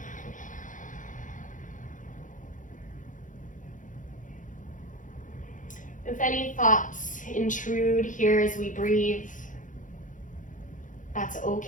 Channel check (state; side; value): late; right; 0.37 ms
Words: If any thoughts intrude here as we breathe, that's